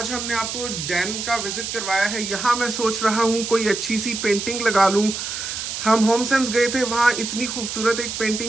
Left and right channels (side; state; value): right; noise; hiss, 5 dB below the sound